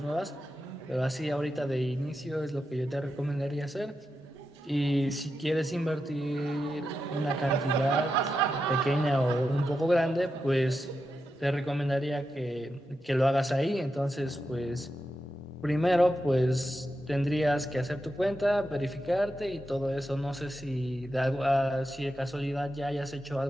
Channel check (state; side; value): normal; both; correlation 0.88